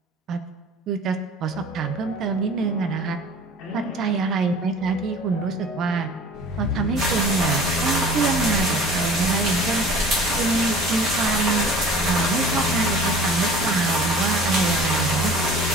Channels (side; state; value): both; normal; correlation 0.44